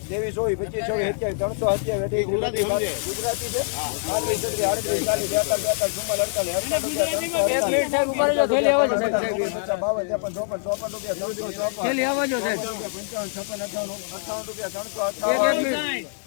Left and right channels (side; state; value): right; silent; 62 dB below the other